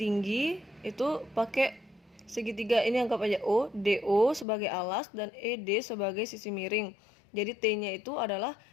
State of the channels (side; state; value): right; drops out; at 4.5 s